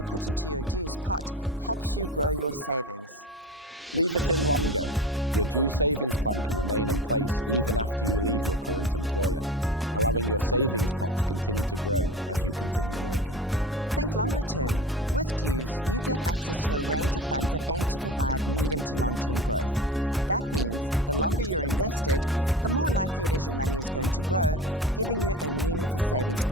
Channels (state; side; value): normal; both; correlation 0.32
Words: put into your DEWS pot helps you grow your savings. Leave it in longer. Your DEWS savings plan can remain in place even after you leave your current employer, allowing your savings pot to continue to grow as you continue working. Think longer term. With DEWS, you get access to a range of funds that aim to provide medium to long-term growth. That means the longer you're invested, the more likely it is your money is going to grow, giving you a meaningful savings